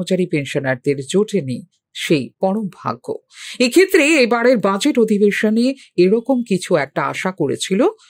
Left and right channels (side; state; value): both; identical; correlation 1.00